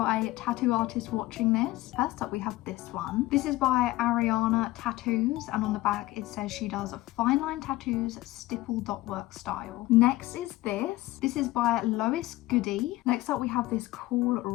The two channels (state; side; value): quieter; right; 18.0 dB